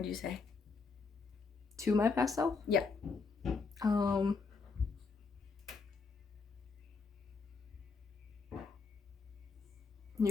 would you say? To my past self? Yeah.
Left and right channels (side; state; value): right; quieter; 4.6 dB